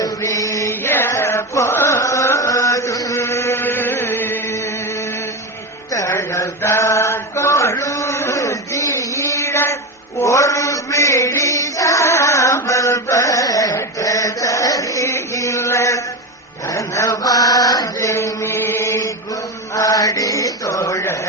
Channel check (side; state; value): both; normal; correlation 0.17